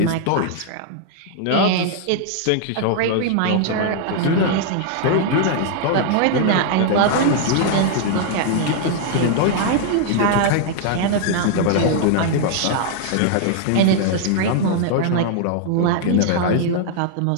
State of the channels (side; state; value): both; different; correlation 0.00